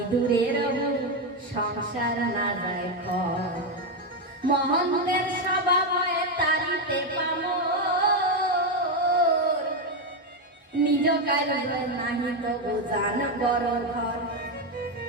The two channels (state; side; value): normal; both; correlation 0.07